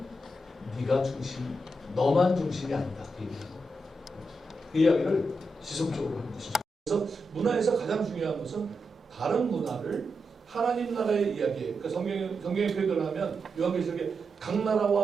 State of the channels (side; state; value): both; normal; correlation 0.86